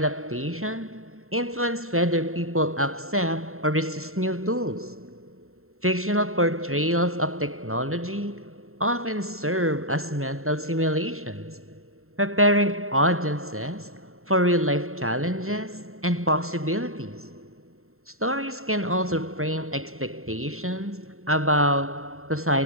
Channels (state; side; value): late; left; 0.62 ms